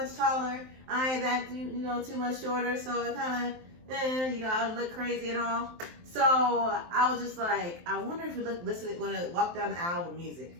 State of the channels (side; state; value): left; late; 23 ms